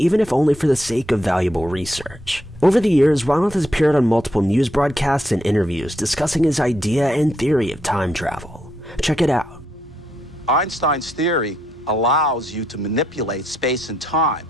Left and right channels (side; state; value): both; normal; correlation 0.78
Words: if only for the sake of valuable research. Over the years, Ronald has appeared on multiple news broadcasts and interviews discussing his idea and theory of time travel. Check it out. Einstein's theory allows you to manipulate space and time.